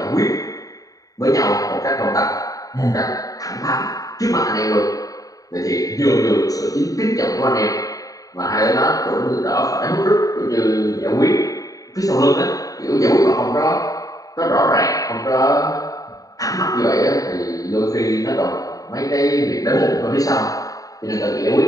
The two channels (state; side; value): late; right; 0.17 ms